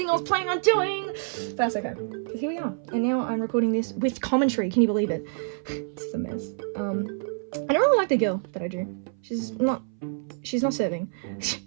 I was planning on doing. But that's okay, because here we are. And now I'm recording this with commentary. Can you believe it? It's a mess. I don't really like the girl that I drew. She's not serving.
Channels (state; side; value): silent; left; 57 dB below the other